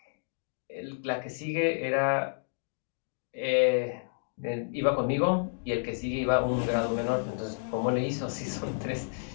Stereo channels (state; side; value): silent; right; digital silence